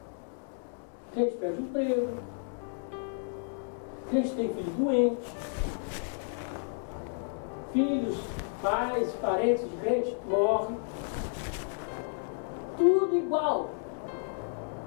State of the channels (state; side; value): silent; right; digital silence